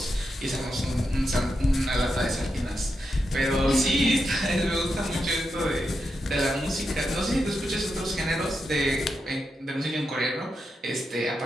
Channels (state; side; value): normal; both; correlation 0.86